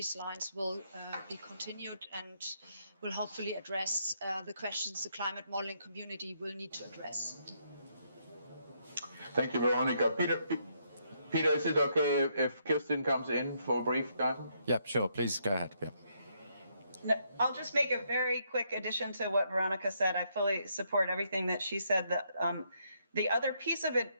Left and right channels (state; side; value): inverted; both; correlation -0.74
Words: lines will be continued and will hopefully address the questions the climate modeling community will need to address. Thank you, Veronica. Peter, is it okay if Kirsten comes in for a brief time? Yeah, sure. Please go ahead. Yeah. No, I'll just make a very quick addition to what Veronica said. I fully support everything that she said. The other piece of